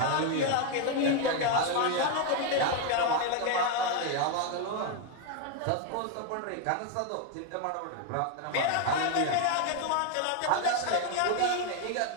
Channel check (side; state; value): both; different; correlation 0.01